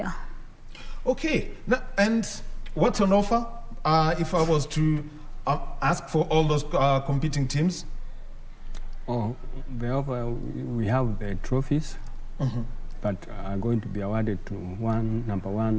Okay, now, and what's on offer? If I was to ask for all those competing teams? Oh, the offer, we have the trophies. But are going to be awarded to number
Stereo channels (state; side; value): identical; both; correlation 1.00